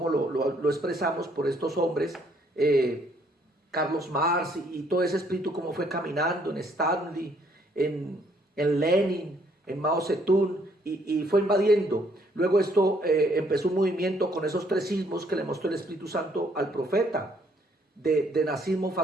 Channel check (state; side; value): normal; both; correlation 0.66